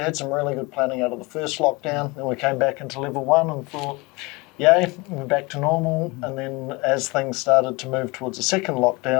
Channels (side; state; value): right; quieter; 25.2 dB